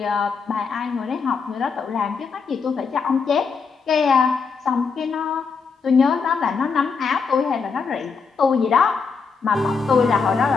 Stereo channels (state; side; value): quieter; right; 5.3 dB